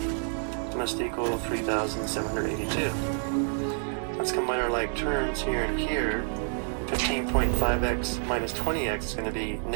must equal 3,782. Let's combine our like terms here and here. 15.5x minus 20x is going to be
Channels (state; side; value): silent; left; 59 dB below the other